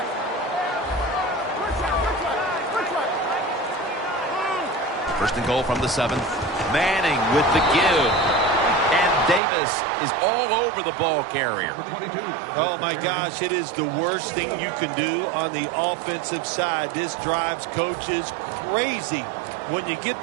First and goal from the 7th. Manning with the give. And Davis is all over the ball carrier. Oh, my gosh, it is the worst thing you can do on the offensive side. This drives coaches crazy. When you get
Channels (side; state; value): left; drops out; at 9.4 s